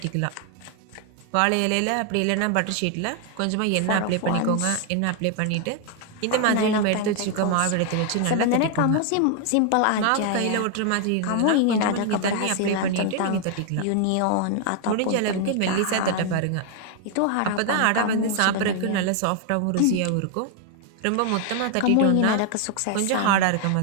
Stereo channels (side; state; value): both; different; correlation 0.00